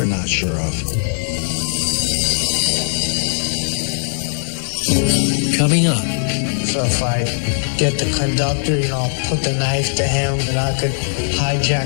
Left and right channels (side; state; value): right; silent; digital silence